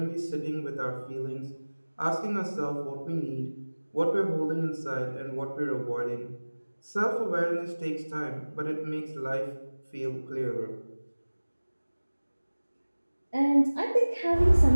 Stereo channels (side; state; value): both; inverted; correlation -1.00